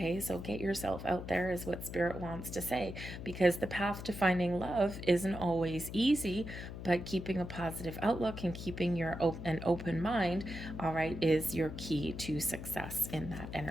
So get yourself out there is what Spirit wants to say, because the path to finding love isn't always easy, but keeping a positive outlook and keeping an open mind, all right, is your key to success in that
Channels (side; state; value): left; noise; hum, 9 dB below the sound